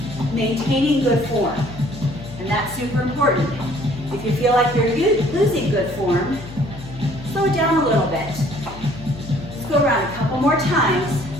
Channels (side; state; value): left; noise; hum, 14 dB below the sound